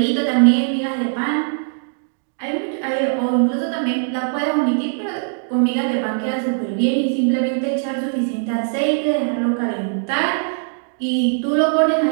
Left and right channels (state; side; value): silent; left; digital silence